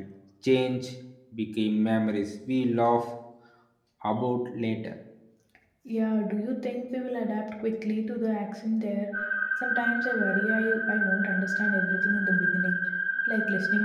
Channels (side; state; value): both; identical; correlation 1.00